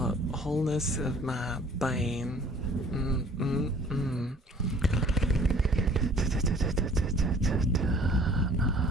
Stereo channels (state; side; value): normal; both; correlation 0.54